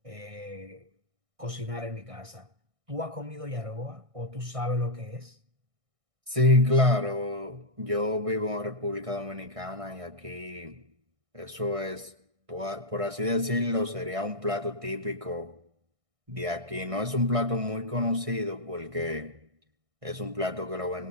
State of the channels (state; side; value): late; left; 1.6 ms